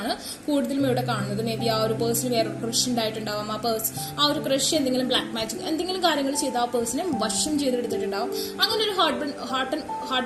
കൂടുതലും ഇവിടെ കാണുന്നത്. മേ ബി ആ ഒരു പേഴ്സൺ വേറെ ക്രഷ് ഉണ്ടായിട്ടുണ്ടാവും. ആ ഒരു ക്രഷ് എന്തെങ്കിലും ബ്ലാക്ക് മാജിക് എന്തെങ്കിലും കാര്യങ്ങൾ ചെയ്ത് ആ പേഴ്സണെ വശം ചെയ്തെടുത്തിട്ടുണ്ടാവും. അങ്ങനെ ഒരു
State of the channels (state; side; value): identical; both; correlation 1.00